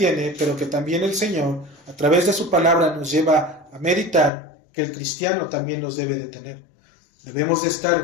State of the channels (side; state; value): right; drops out; at 4.3 s